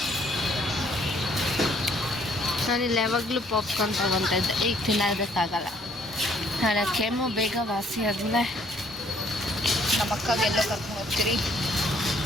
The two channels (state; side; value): normal; both; correlation 0.64